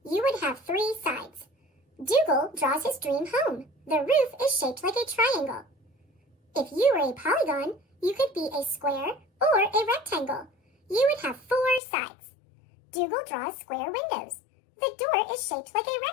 You would have 3 sides. Dougal draws his dream home. The roof is shaped like a triangle. If you were a polygon, you could be a square or a rectangle. You would have 4 sides. Dougal draws square windows. The door is shaped like a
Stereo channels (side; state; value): right; drops out; at 11.8 s